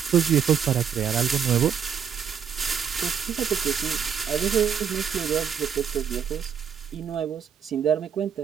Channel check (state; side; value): quieter; left; 7.7 dB